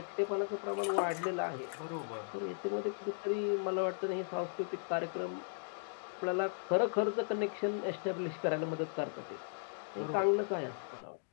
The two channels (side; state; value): right; silent; digital silence